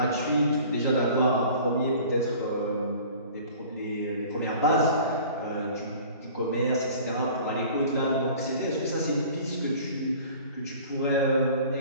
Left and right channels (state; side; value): inverted; both; correlation -0.46